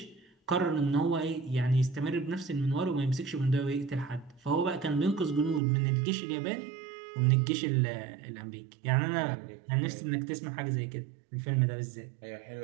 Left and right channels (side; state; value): left; drops out; at 5.6 s